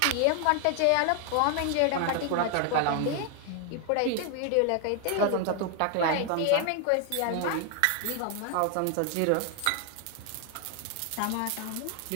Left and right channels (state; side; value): different; both; correlation 0.00